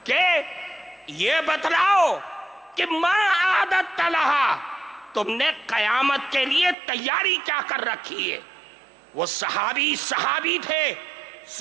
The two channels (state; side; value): drops out; left; at 6.8 s